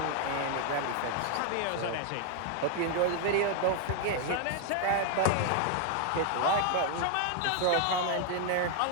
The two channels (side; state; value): both; different; correlation 0.00